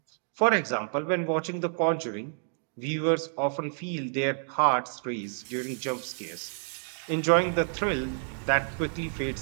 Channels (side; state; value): left; silent; 59 dB below the other